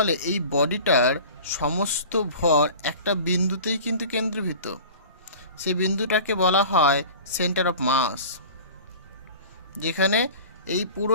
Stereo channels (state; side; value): inverted; both; correlation -0.40